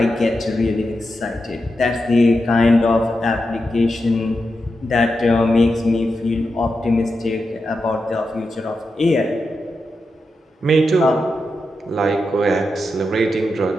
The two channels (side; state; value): both; normal; correlation 0.88